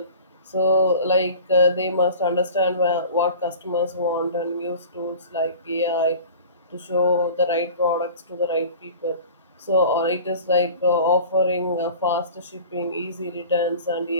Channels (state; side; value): inverted; both; correlation -0.41